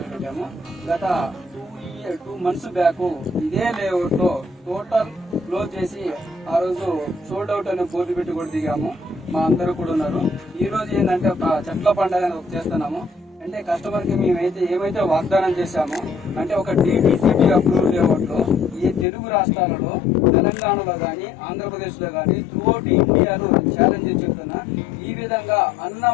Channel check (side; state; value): right; drops out; at 19.1 s